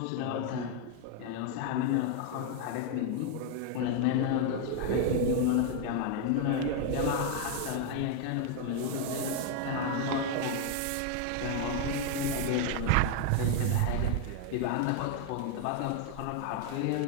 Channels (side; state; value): both; different; correlation 0.01